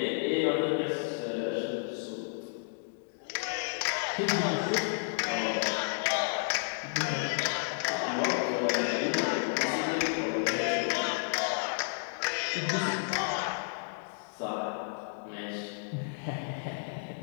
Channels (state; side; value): silent; right; digital silence